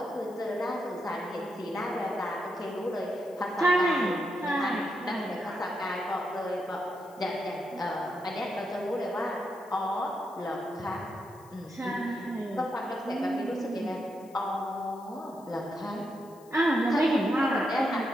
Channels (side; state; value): left; noise; hiss, 26 dB below the sound